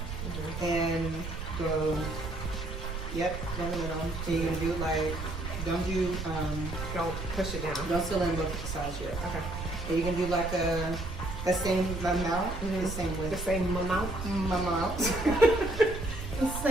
and go. Yep, down the middle. So you're gonna do like, don't Don't push it down. don't fill in both sides yet. Okay. And you can do like the same amount, the same The width. same amount. Amount. The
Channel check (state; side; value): noise; right; rumble, 6 dB below the sound